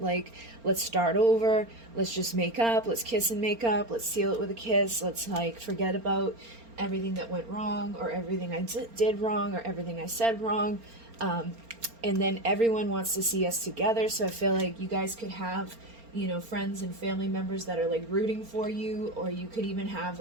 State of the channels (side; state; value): left; late; 4.3 ms